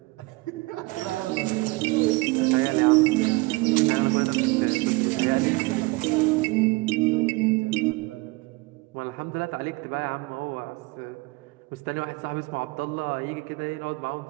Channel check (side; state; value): left; quieter; 24.0 dB